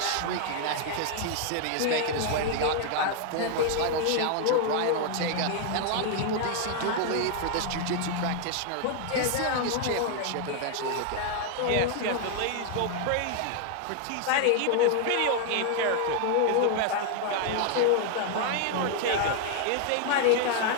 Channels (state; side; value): different; both; correlation 0.00